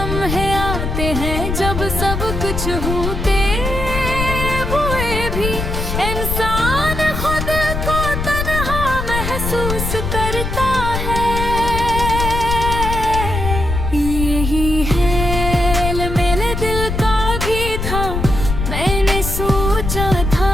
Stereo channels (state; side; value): noise; left; rumble, 3 dB below the sound